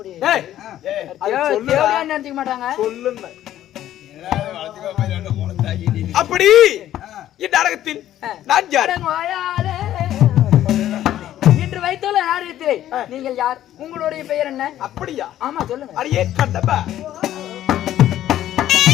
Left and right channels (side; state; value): right; quieter; 12.5 dB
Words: நினைச்சுக்க மாட்டாங்க. சொல்லுங்க அப்படி இந்நாடகத்தில் நான் யார்? இன்று வைத்துள்ள நாடகத்திலே நீங்கள் யார்? உங்களுடைய பெயர் என்ன? அப்படியா? ஆமா சொல்லுங்க. அடியே கண்டப்பா